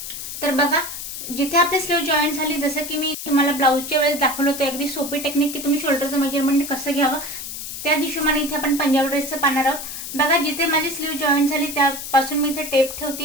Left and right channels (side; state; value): left; noise; hiss, 8 dB below the sound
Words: तर बघा जिथे आपली स्लीव जॉईन झाली, जसं की मी तुम्हाला ब्लाऊजच्या वेळेस दाखवलं होतं अगदी सोपी टेक्निक की तुम्ही शोल्डरचं मेजरमेंट कसं घ्यावं, त्या हिशोबाने इथे आपण पंजाबी ड्रेसचं पाहणार आहोत। बघा जिथे माझी स्लीव जॉईन झाली त्यापासून मी इथे टेप